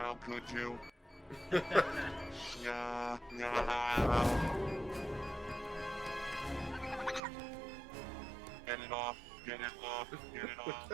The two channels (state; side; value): drops out; left; at 7.2 s